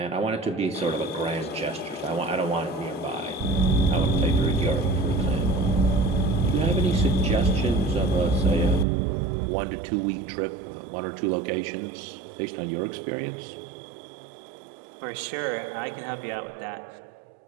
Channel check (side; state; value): left; drops out; at 8.8 s